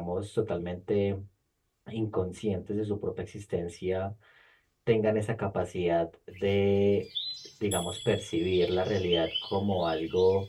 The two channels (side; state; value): both; identical; correlation 1.00